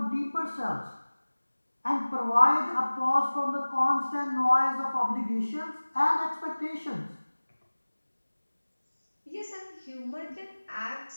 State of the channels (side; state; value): both; inverted; correlation -1.00